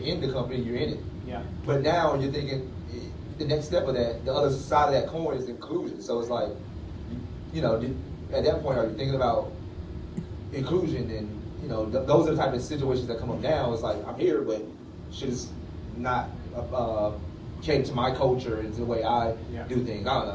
in the company, you're in it. Yeah. But now you're thinking the next step of that, the other side of that coin is inclusion. So it's like, you know, at that point, are you thinking about inclusion? And, you know, those are the type of situations that come up now. It's like, I'm here, but shit is not cater to my culture and to the way I do things. I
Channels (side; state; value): both; identical; correlation 1.00